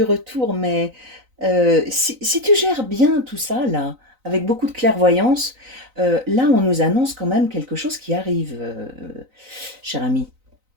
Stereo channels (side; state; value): left; late; 3.9 ms